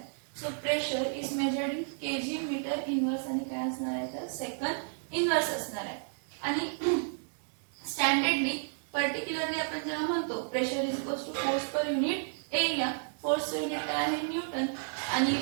So pressure is measured in KG metre inverse आणि काय असणार आहे तर सेकंड इनवर्स असणार आहे. आणि स्टँडर्डली पर्टिक्युलरली आपण जेव्हा म्हणतो pressure is equals to force per unit area, फोर्सचं युनिट काय आहे? न्यूटन. आणि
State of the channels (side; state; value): left; silent; digital silence